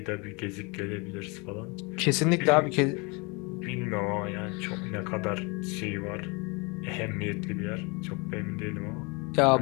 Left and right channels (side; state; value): right; quieter; 29.4 dB